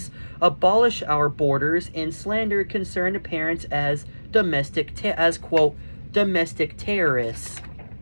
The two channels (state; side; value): inverted; both; correlation -1.00